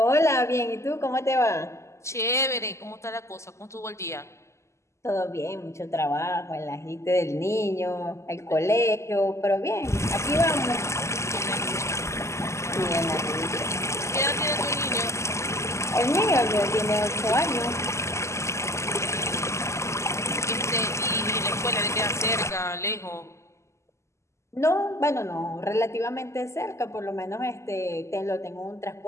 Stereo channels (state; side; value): late; right; 0.13 ms